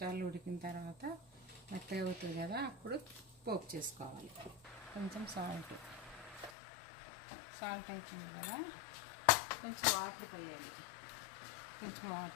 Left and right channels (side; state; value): right; drops out; at 6.5 s